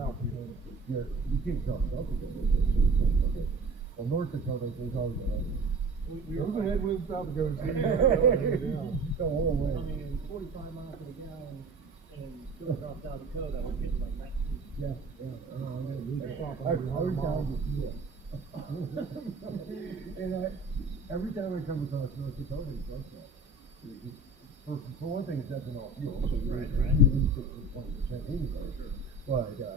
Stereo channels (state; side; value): quieter; left; 3.2 dB